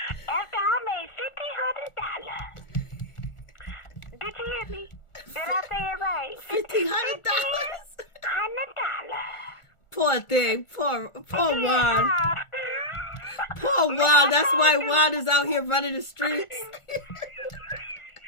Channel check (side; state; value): right; late; 1.4 ms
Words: after I made $1,500. Did you hear me? Did I say it right? $1,500. $1,500. Poor thing. Poor Juan. Poor Juan. That's why Juan is out here running the streets.